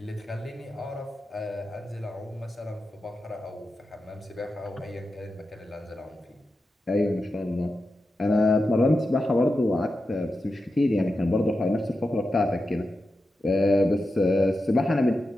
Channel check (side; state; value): both; normal; correlation 0.90